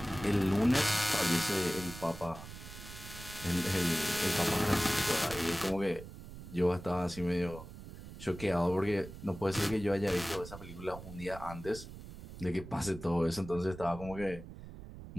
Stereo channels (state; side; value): noise; right; rumble, 13 dB below the sound